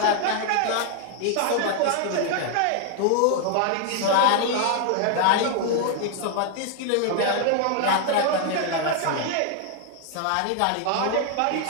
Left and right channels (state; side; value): different; both; correlation 0.00